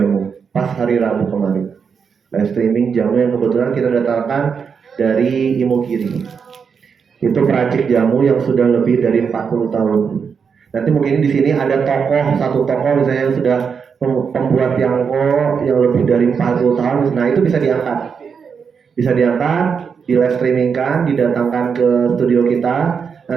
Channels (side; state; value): left; quieter; 6.3 dB